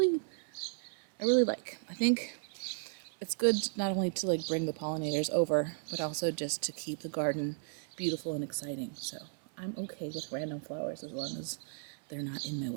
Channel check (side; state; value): left; silent; 55 dB below the other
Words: really like. I think it's good not only to like bring the pollinators over, but also just to keep the garden beautiful and exciting. So I'm okay with random flowers as long as they're not in my